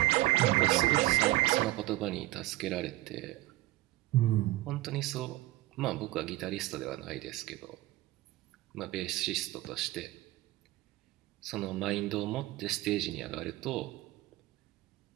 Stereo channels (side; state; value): left; quieter; 18.2 dB